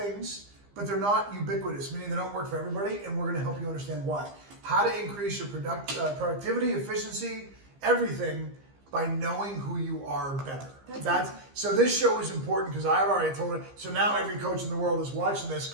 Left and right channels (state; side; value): late; left; 15 ms